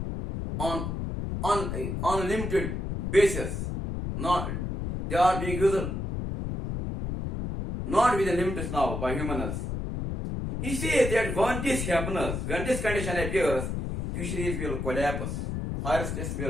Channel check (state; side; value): noise; left; rumble, 3 dB below the sound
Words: on unlimited basis. They are being used not with the limits now by humans. He says that when this happens, when this condition appears, fisheries will collapse, forests